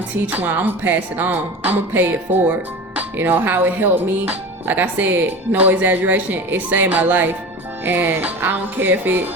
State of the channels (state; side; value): normal; both; correlation 0.32